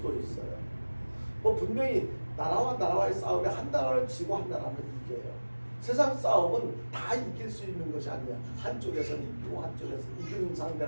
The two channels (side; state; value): both; inverted; correlation -1.00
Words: 있어요. 뭐 분명히 나라와 나라와의 싸움에 한 나라를 지고 한 나라는 이겨요. 세상 싸움은 다 이길 수 있는 것이 아니야. 한쪽에서는 이기고 한쪽에서 이기는